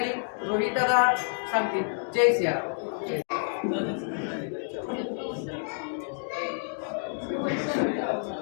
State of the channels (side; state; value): right; silent; 59 dB below the other